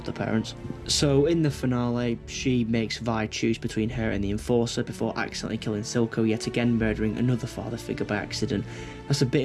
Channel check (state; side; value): identical; both; correlation 1.00